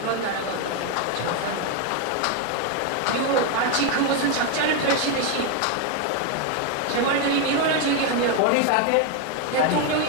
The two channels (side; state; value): both; different; correlation 0.01